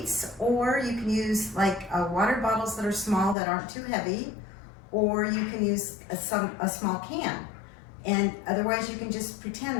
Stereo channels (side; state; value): right; drops out; at 3.4 s